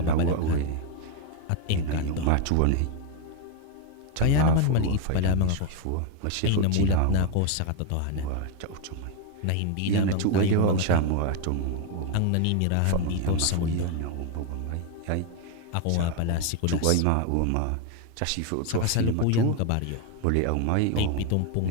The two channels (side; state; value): both; different; correlation 0.01